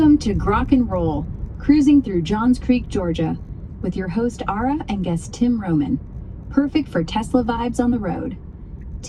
to Grok and Roll, cruising through Johns Creek, Georgia, with your host Ara and guest Tim Roman. Perfect for Tesla vibes on the road.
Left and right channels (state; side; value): identical; both; correlation 1.00